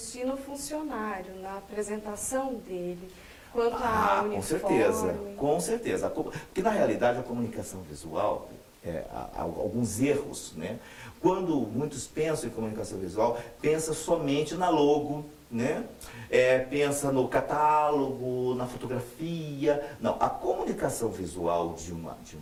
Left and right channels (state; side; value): identical; both; correlation 1.00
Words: no funcionário, na apresentação dele, quanto a uniforme. Com certeza. Porque na realidade a comunicação visual, há alguns erros, né? Quando muitos pensam em comunicação visual, pensa somente na logo, né? Pensa no catálogo, na fotografia. Não, a comunicação visual de uma